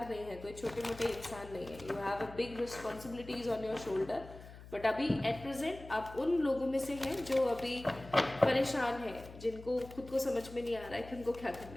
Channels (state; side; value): noise; left; hum, 16 dB below the sound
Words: नहीं है, कोई छोटे मोटे इंसान नहीं है। You have a big responsibilities on your shoulder. But अभी एट प्रेजेंट आप उन लोगों में से हैं जो अभी परेशान हैं, जिनको खुद को समझ में नहीं आ रहा है कि उनको क्या